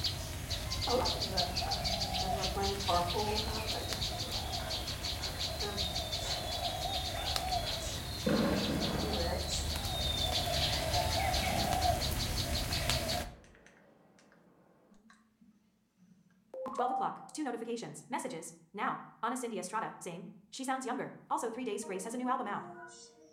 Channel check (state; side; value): identical; both; correlation 1.00